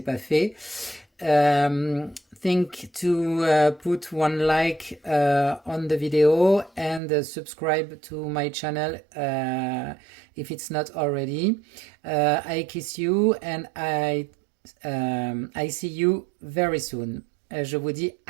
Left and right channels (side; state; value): left; drops out; at 7.0 s